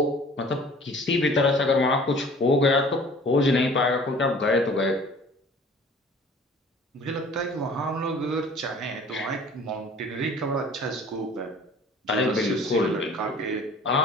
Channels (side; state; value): both; normal; correlation 0.48